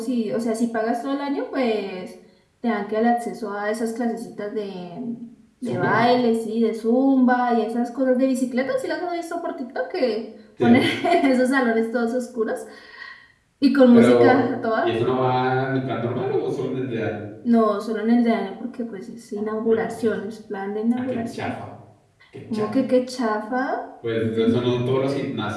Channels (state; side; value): identical; both; correlation 1.00